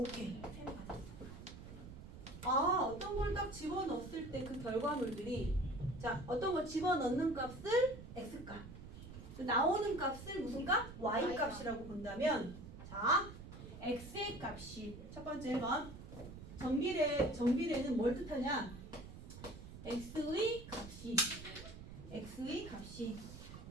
3배가 됐어. 어떤 걸 딱 집어넣었을 때 그 결과물들이 자, 어떤 걸 집어넣는 값을 x값 나오는 값을 무슨 값? y값이라고 본다면 자, x의 값이 첫 번째 1번 정비례는 뭘 뜻하냐? x의 값이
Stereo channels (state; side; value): noise; right; rumble, 13 dB below the sound